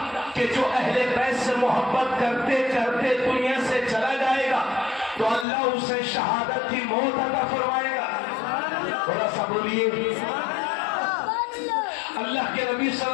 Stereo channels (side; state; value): right; drops out; at 5.5 s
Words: کہ جو اہل بیت سے محبت کرتے کرتے دنیا سے چلا جائے گا تو اللہ اسے شہادت کی موت عطا فرمائے گا۔ تھوڑا سا بولیے۔ اللہ کے نبی صلی